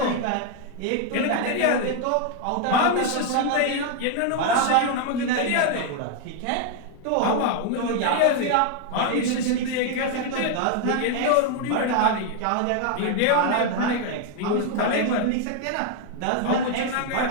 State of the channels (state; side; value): different; both; correlation 0.00